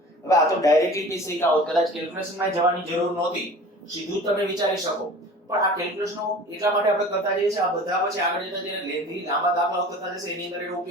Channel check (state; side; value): normal; both; correlation 0.41